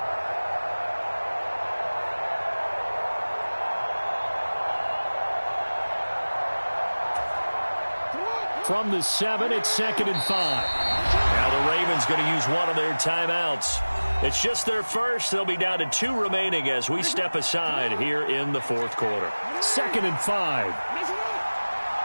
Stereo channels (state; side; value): inverted; both; correlation -1.00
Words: From the 7, it's 2nd and 5. Now the Ravens going to use one of their timeouts. It's just their first. They'll be down to 2 remaining as we step aside here in the 4th quarter. 2nd and 5.